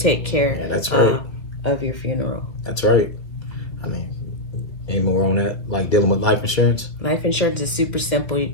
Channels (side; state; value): right; late; 2.4 ms